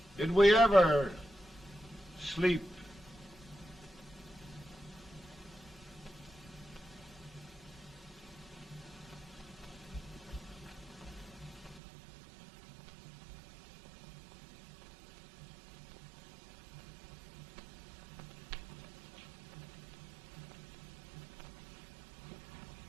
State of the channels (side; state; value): left; drops out; at 11.8 s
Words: Did we ever sleep?